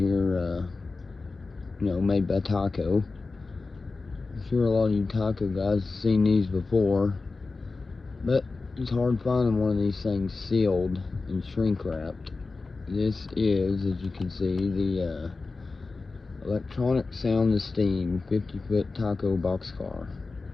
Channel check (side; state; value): right; quieter; 3.9 dB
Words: made by TYCO. I'm sure a lot of you TYCO guys have seen these before, but it's hard finding one of these things sealed and shrink wrapped. This is, as you can see, the electronic sound and steam 50-foot TYCO boxcar